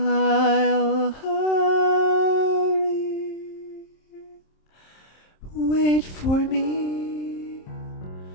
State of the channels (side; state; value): right; late; 27 ms